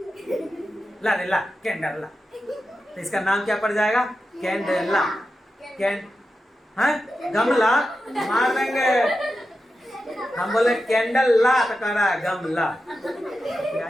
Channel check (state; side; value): normal; both; correlation 0.90